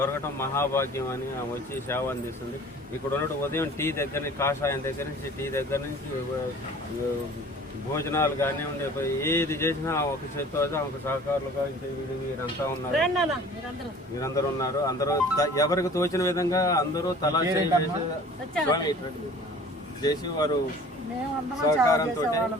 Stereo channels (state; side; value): normal; both; correlation 0.47